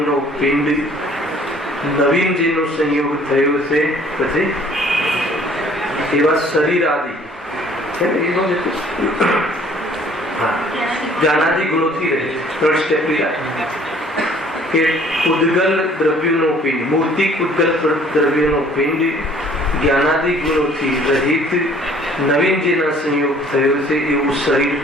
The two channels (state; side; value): normal; both; correlation 0.56